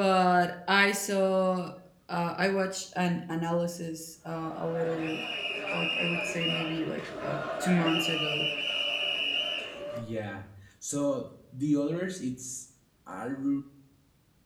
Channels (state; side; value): identical; both; correlation 1.00